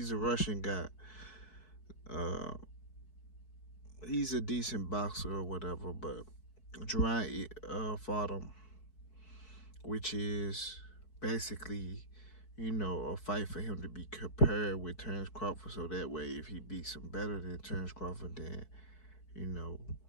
a Russian guy. He's a decent boxer or whatever, but Jaron fought him, which is basically, a fight for him to be compared with Terence Crawford, so that way if he beats him better than Terence Crawford, then,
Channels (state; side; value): late; right; 4.6 ms